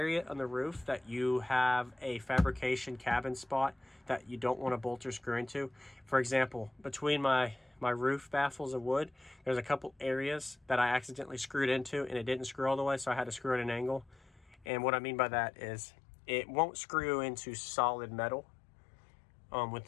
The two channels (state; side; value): drops out; right; at 14.7 s